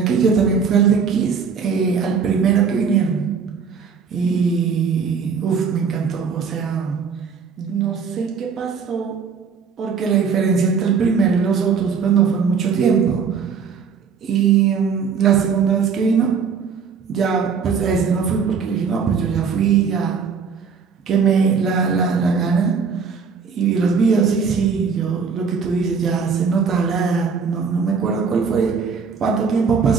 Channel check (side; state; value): left; quieter; 5.9 dB